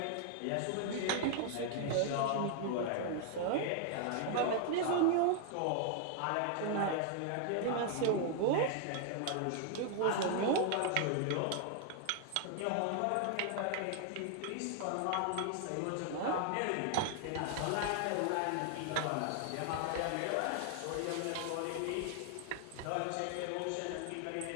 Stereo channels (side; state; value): both; different; correlation 0.00